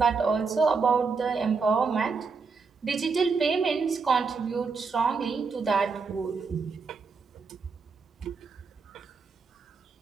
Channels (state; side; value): quieter; left; 4.9 dB